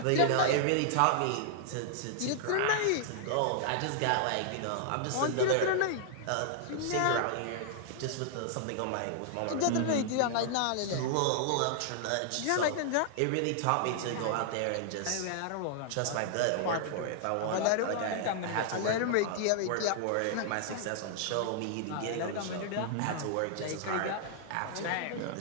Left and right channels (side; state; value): both; different; correlation -0.01